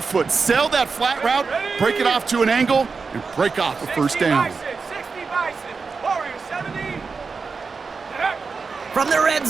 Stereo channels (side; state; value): left; quieter; 4.8 dB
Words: sell that flat route, break it off to an angle, and break off a first down. 60 Bison, Warrior 70. From the red